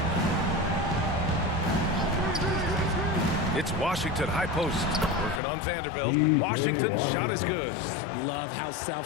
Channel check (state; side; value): drops out; right; at 5.4 s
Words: It's Washington, high post. Working on Vanderbilt. Washington's shot is good. Love how